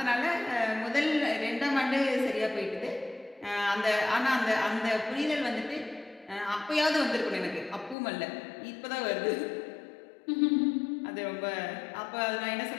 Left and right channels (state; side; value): drops out; right; at 8.0 s